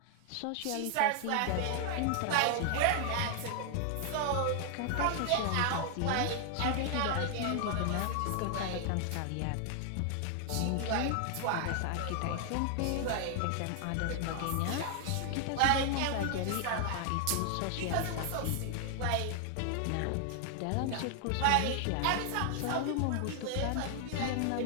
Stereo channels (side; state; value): both; different; correlation 0.00